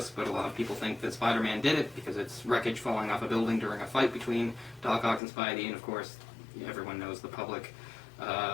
but a lot of people think that Spider-Man did it because it's wreckage falling off a building during a fight between Doc Ock and Spidey, and of course, everyone knows the public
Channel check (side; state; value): right; drops out; at 5.2 s